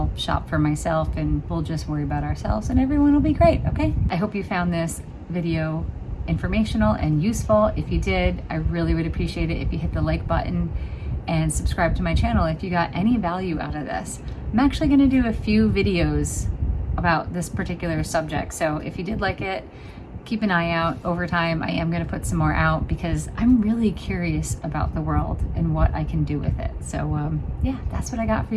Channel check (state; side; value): identical; both; correlation 1.00